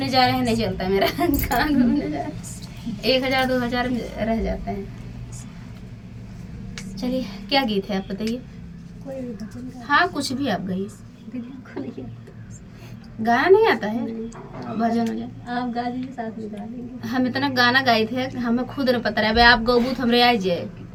जा रहे हैं नहीं चलता है मेरा कहाँ घूमने जा रहे हैं 1000 2000 रह जाता है। चलिए क्या गीत है आप बताइए। हाँ कुछ भी आप गाइए। गाना नहीं आता है, भजन हो जाए आप गा दीजिए, साथ में गा देंगे। हम इतना गाना गाए थे हमें खुद नहीं पता रहा। आप गौबूत हमरे आ जाए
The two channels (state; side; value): identical; both; correlation 1.00